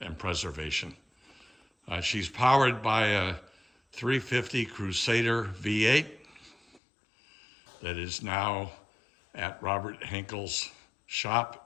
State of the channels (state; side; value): drops out; right; at 6.8 s